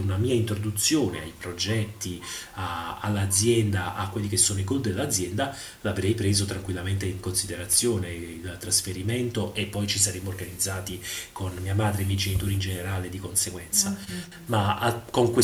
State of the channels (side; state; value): both; identical; correlation 1.00